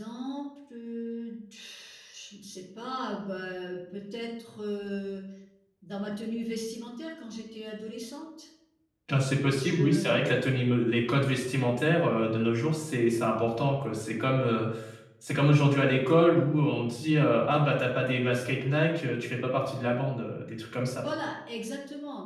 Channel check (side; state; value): both; identical; correlation 1.00